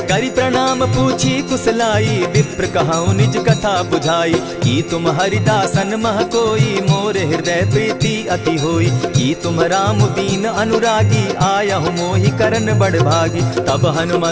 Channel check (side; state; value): both; identical; correlation 1.00